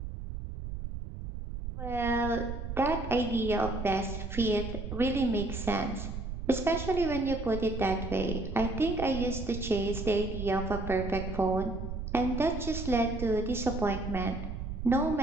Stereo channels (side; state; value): right; noise; rumble, 6 dB below the sound